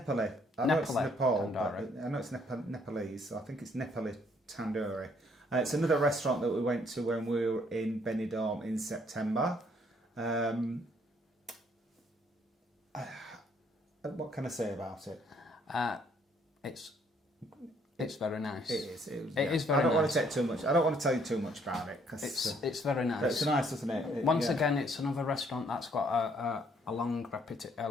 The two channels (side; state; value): both; normal; correlation 0.65